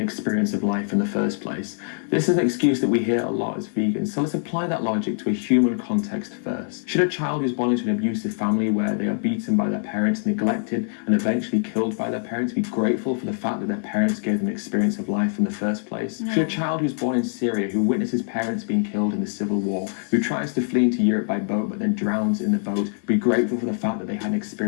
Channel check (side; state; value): right; silent; 63 dB below the other